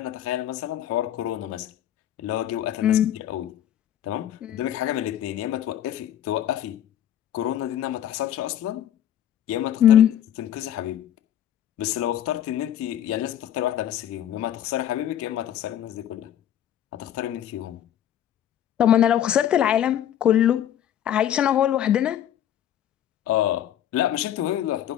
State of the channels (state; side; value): quieter; right; 10.9 dB